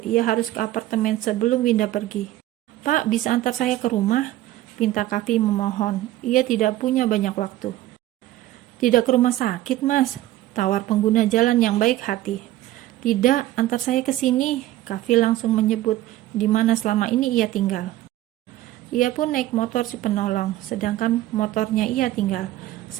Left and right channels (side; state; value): left; quieter; 14.9 dB